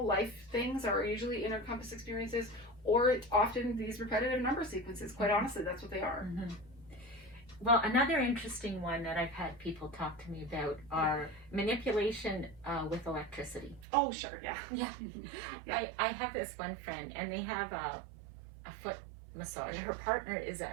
life things are usually inner compass experiences, or often these repetitive number sequences. Quite honestly, that's what they are. Well, another interesting one that I've had people talk to me about are manipulation with electricity. Oh, sure, yeah. Yeah. I have this one friend, and they have a foot massage. Her partner is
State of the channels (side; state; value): left; drops out; at 13.9 s